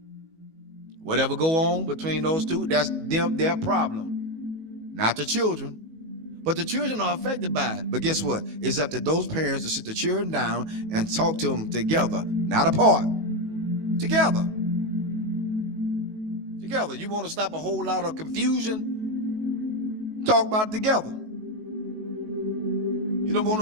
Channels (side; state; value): left; late; 19 ms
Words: Whatever go on between those two, that's their problem. Not the children. But the children are affected by it. But guess what? It's up to those parents to sit the children down and talk to them together, not apart. Together. Together. You want to stop a whole lot of confusion? Talk about it together. You don't want